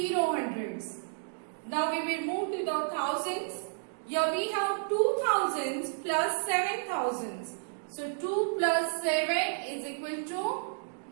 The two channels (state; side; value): silent; left; digital silence